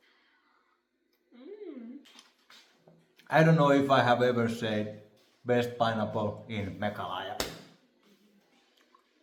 I don't know if I have ever said best pineapple in Meghalaya.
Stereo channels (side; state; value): both; identical; correlation 1.00